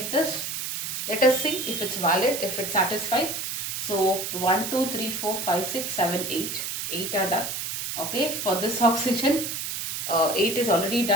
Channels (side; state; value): right; noise; hiss, 4 dB below the sound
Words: this? Let us see if it's valid, if it satisfies. So 1, 2, 3, 4, 5, 6, 7, 8. 8 are done. Okay, for this oxygen, 8 is already